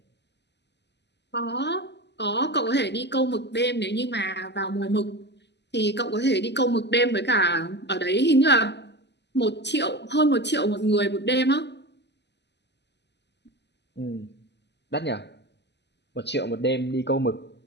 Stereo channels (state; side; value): late; right; 0.50 ms